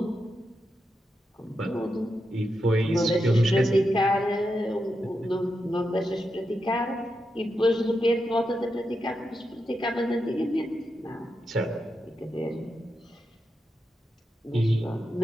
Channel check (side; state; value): both; normal; correlation 0.86